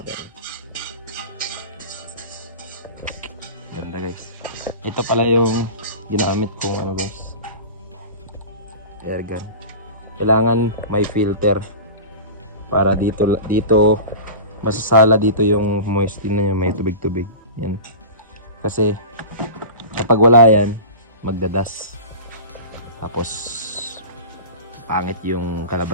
Ganda, guys. Ito pala yung ginamit kong ano, guys. Air gun. Kailangan may filter para dito masasala dito yung moisture na may tubig-tubig. Yan. Kasi kapag wala yan, magdadas. Tapos pangit yung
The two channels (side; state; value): both; inverted; correlation -0.33